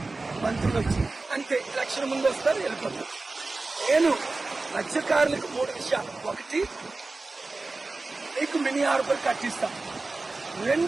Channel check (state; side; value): quieter; left; 3.4 dB